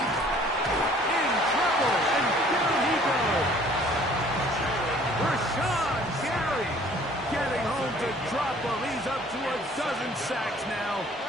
In trouble, and down he goes. Rashawn Gary getting home to drop him. He's up to a dozen sacks now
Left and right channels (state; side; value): normal; both; correlation 0.55